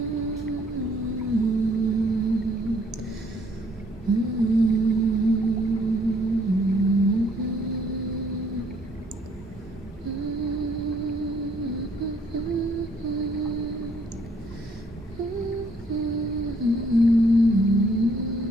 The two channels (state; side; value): normal; both; correlation 0.65